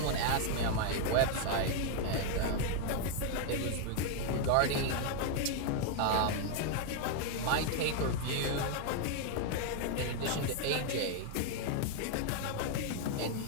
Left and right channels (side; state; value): both; different; correlation 0.00